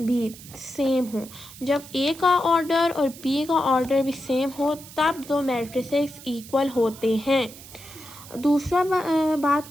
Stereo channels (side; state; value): right; noise; hiss, 17 dB below the sound